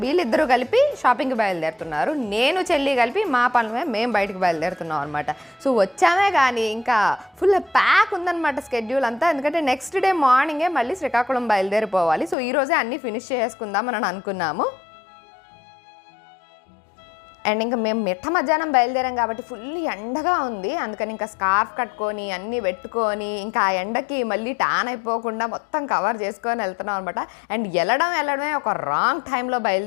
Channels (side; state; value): right; drops out; at 12.4 s